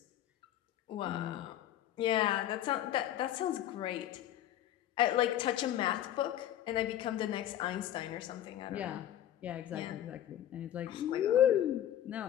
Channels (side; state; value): right; quieter; 11.8 dB